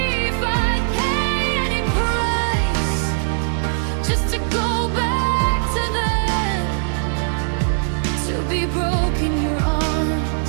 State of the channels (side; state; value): left; silent; digital silence